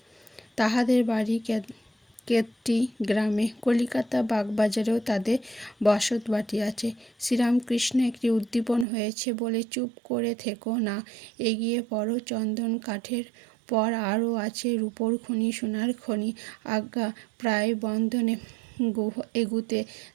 তাহাদের বাড়ি কেতটি গ্রামে। কলিকাতা বাগবাজারেও তাদের বসত বাটি আছে। শ্রীরামকৃষ্ণ একটি উদ্দীপন হয়েছে বলে চুপ করে থেকো না, এগিয়ে পড়ো। চন্দন কাঠের পর আরও আছে রূপোর খনি, সোনার খনি। আজ্ঞা প্রায় বন্ধনে এগুতে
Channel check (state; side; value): drops out; left; at 8.8 s